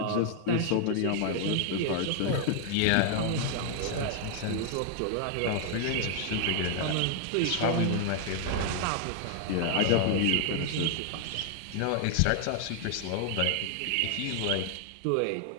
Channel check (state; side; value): different; both; correlation 0.00